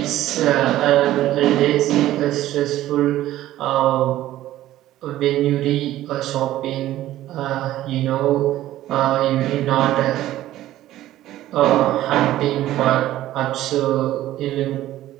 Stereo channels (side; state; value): left; quieter; 14.2 dB